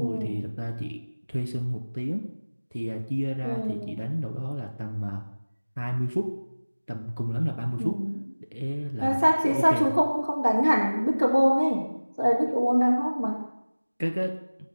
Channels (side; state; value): both; inverted; correlation -1.00